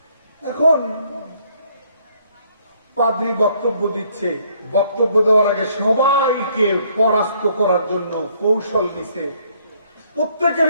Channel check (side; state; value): both; inverted; correlation -0.66